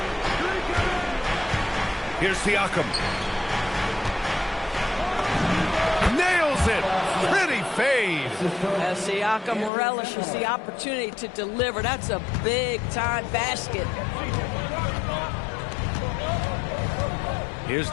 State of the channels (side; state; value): right; drops out; at 9.7 s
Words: Here's Siakam. Nails it. Pretty fade. Siakam relishes the opportunity to deliver. That's a big-time basket. Here's